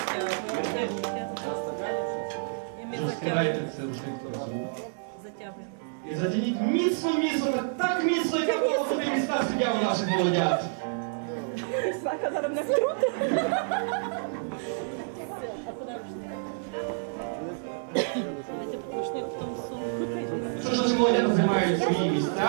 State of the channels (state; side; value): silent; left; digital silence